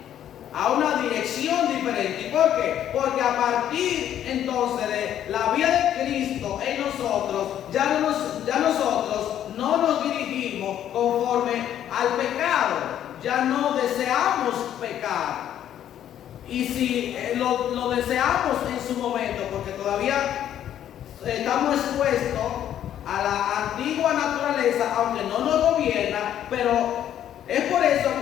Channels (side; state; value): right; quieter; 10.7 dB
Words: A una dirección diferente. ¿Y por qué? Porque a partir entonces de la vida de Cristo en nosotros, ya nosotros no nos dirigimos conforme al pecado. Ya no deseamos pecar. Y si lo deseamos en su momento, porque todavía estamos expuestos a la antigua naturaleza, aunque no nos gobierna, pero es por eso